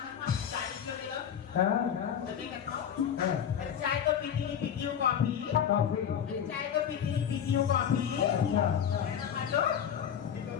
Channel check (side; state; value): right; quieter; 8.8 dB